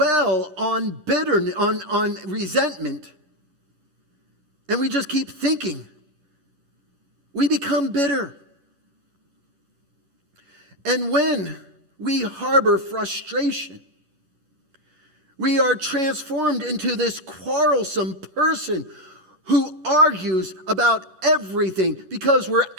on bitterness, on resentment, and we just keep thinking, we become bitter. And when we harbor frustration, we are transformed into this quarrelsome person who argues about everything because we're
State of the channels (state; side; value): late; left; 11 ms